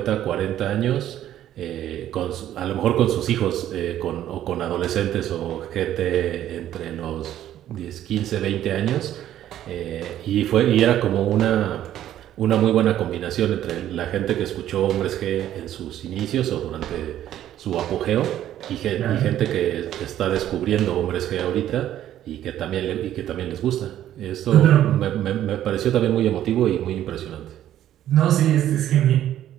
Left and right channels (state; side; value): quieter; left; 12.0 dB